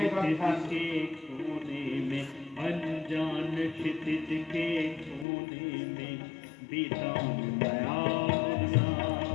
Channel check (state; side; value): drops out; right; at 5.2 s